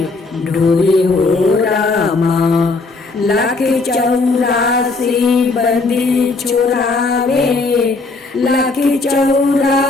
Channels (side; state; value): right; quieter; 3.7 dB